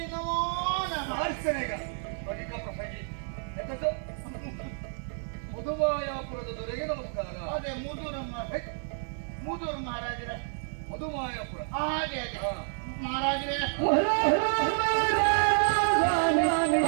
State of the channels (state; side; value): silent; left; 58 dB below the other